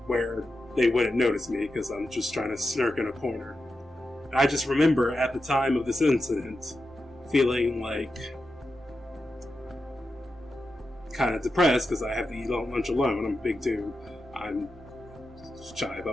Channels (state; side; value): normal; both; correlation 0.89